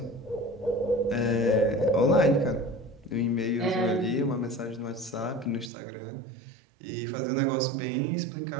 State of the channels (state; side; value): drops out; left; at 5.7 s